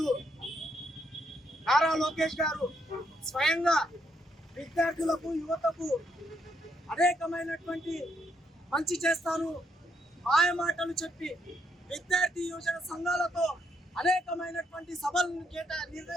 నారా లోకేష్ గారు స్వయంగా విద్యార్థులకు, యువతకు అనేకమైనటువంటి మంచి చేస్తాను మాయమాటలు చెప్పి విద్యార్థి యువజన సంఘాలతో అనేకమైనటువంటి సభలను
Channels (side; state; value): both; normal; correlation 0.75